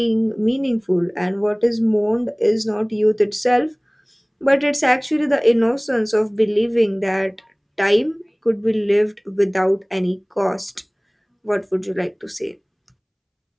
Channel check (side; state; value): both; identical; correlation 1.00